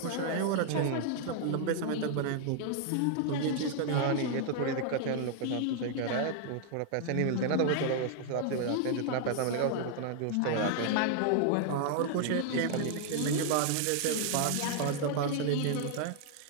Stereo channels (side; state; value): both; different; correlation 0.00